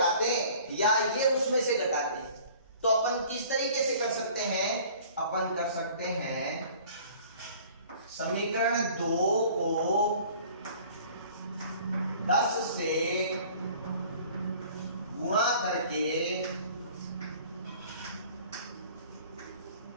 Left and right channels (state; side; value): inverted; both; correlation -0.49